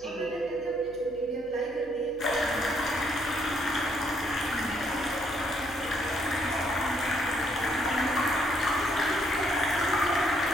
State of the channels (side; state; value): left; noise; hum, 23 dB below the sound